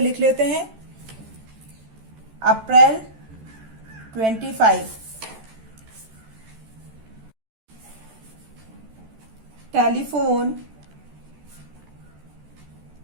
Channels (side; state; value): left; late; 14 ms